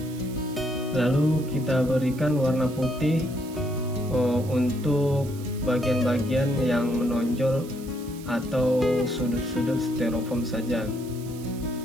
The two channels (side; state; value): right; noise; hiss, 19 dB below the sound